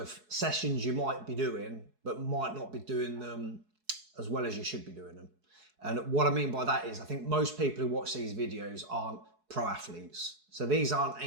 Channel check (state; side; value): late; left; 4.7 ms